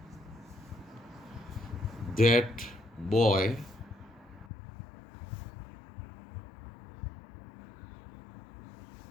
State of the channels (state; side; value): drops out; right; at 4.5 s